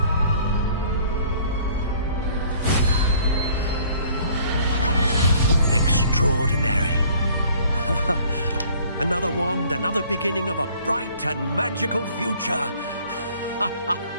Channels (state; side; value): inverted; both; correlation -0.55